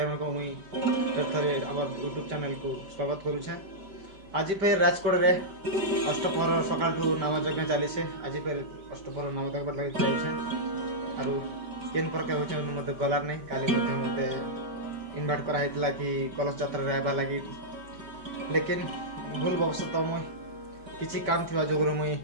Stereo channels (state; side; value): late; left; 5.1 ms